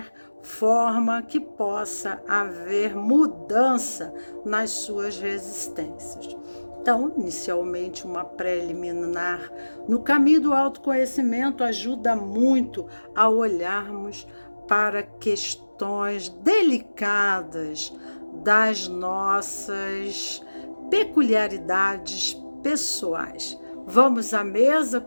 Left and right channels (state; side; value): inverted; both; correlation -1.00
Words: forma que possa haver mudança nas suas resistências. Então, inicialmente, uma preliminar no caminho do autoconhecimento ajuda muito a olharmos para questões delicadas das nossas peculiaridades pessoais. Vamos à mesa